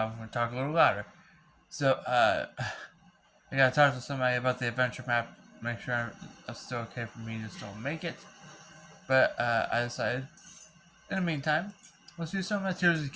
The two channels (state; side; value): identical; both; correlation 1.00